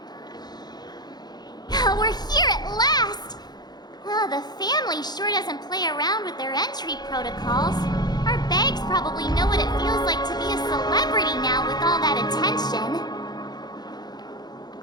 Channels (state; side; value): late; right; 0.20 ms